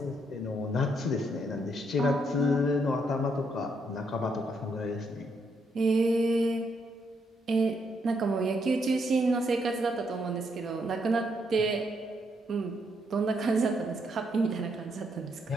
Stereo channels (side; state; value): both; normal; correlation 0.76